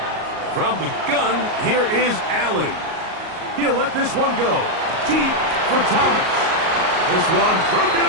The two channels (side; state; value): left; late; 38 ms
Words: From the gun, here is Allen. He'll let this one go. Deep for Thomas. This one broken